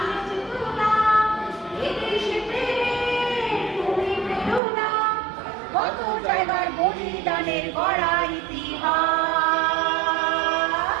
বেঁচে তুলনা, এ দেশে প্রেমে তুমি প্রেরণা। কত জায়গার বলিদানের গড়া ইতিহাস,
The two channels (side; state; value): left; drops out; at 4.6 s